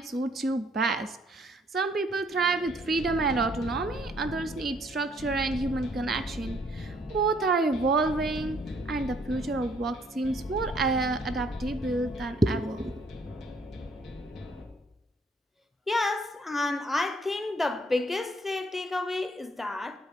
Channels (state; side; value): normal; both; correlation 0.65